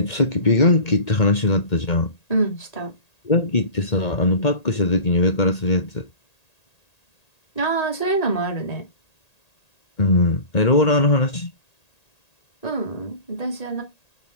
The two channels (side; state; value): right; late; 1.8 ms